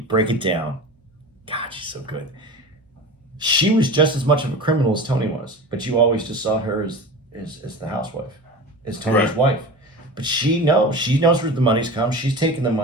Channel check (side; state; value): both; normal; correlation 0.32